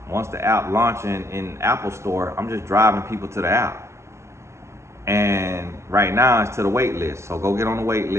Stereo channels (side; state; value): left; late; 0.13 ms